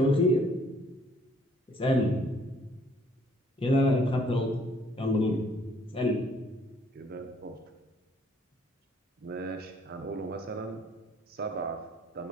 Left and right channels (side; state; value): both; normal; correlation 0.62